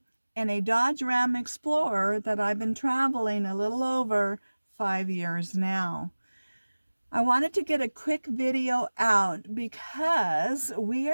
in a Dodge Ram Explorer that I've been traveling a little over 5 years now. I wanted to get a quick video out because we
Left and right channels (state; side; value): inverted; both; correlation -1.00